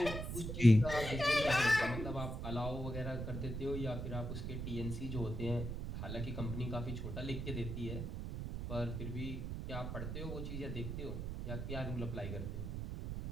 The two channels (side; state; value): right; noise; rumble, 4 dB below the sound